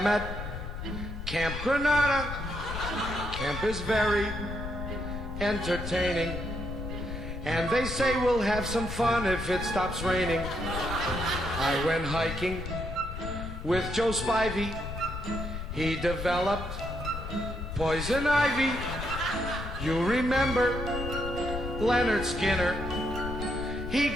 at Camp Granada. Camp is very entertaining, and they say we'll have some fun if it stops raining. I went hiking with Joe Spivey. He developed poison ivy. You remember Leonard Skinner? He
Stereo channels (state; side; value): noise; left; rumble, 7 dB below the sound